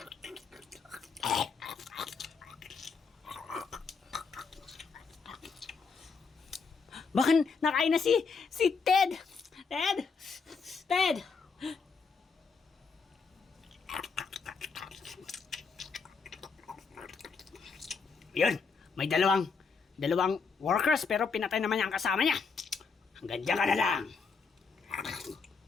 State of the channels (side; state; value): right; quieter; 5.1 dB